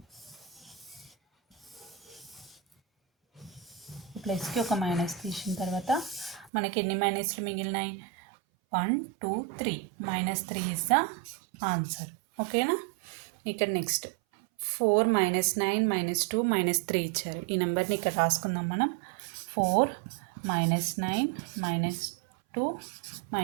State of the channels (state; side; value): drops out; left; at 6.5 s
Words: ప్లస్కి ఒక మైనస్ తీసిన తర్వాత మనకి ఎన్ని మైనస్లు మిగిలినాయి? 1 2 3. -3 ఇస్ ద ఆన్సర్. ఓకేనా. ఇక్కడ నెక్స్ట్ 4 - 9 - 2 - 3 ఇచ్చారు. ఈ నెంబర్ని ఇక్కడ రాసుకుందాం మనం. 4 - 9 - 2